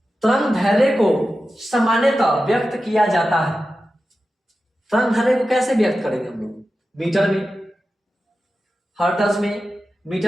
तरंग दैर्ध्य को सामान्यतः व्यक्त किया जाता है। तरंग दैर्ध्य को कैसे व्यक्त करेंगे हम लोग? मीटर में, हर्ट्ज में,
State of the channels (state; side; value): normal; both; correlation 0.92